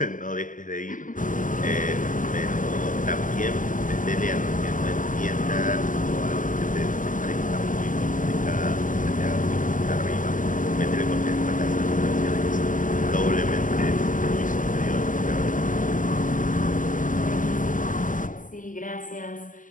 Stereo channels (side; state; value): right; late; 0.38 ms